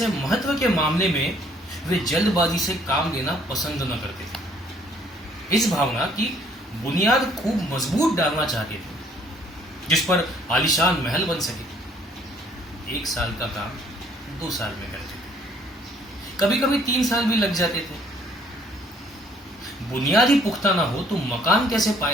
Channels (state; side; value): normal; both; correlation 0.61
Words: महत्व के मामले में वे जल्दबाजी से काम लेना पसंद न करते थे। इस भावना की बुनियाद खूब मजबूत डालना चाहते थे जिस पर आलीशान महल बन सके। 1 साल का काम 2 साल में करते थे, कभी कभी 3 साल भी लग जाते थे। बुनियाद ही पुख्ता ना हो तो मकान कैसे